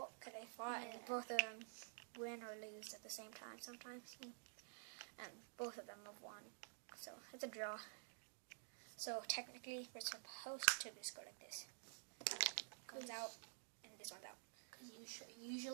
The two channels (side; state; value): left; silent; digital silence